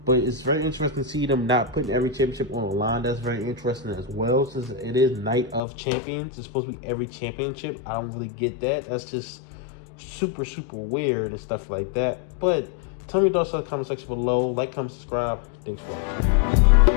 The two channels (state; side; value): drops out; right; at 5.6 s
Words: But it's very interesting to see them not putting every championship on the line. That's very interesting as well, since it is Night of Champions. It's supposed to be every championship. I don't really get that. That's just super, super weird and stuff like that. But tell me your thoughts in the comment section below. Like, comment, subscribe. Thanks for